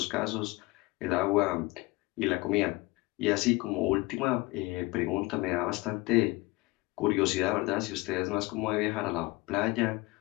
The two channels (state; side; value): quieter; right; 22.7 dB